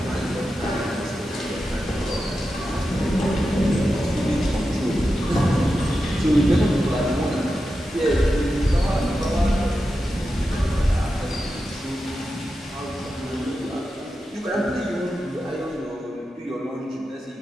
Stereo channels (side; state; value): both; normal; correlation 0.90